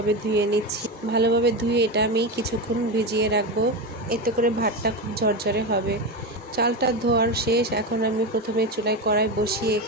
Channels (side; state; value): both; normal; correlation 0.18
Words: ধুয়ে নিচ্ছি। ভালোভাবে ধুয়ে এটা আমি কিছুক্ষণ ভিজিয়ে রাখবো, এতে করে ভাতটা খুব ঝরঝরে হবে। চালটা ধোয়ার শেষ। এখন আমি প্রথমে চুলায় কড়াই বসিয়ে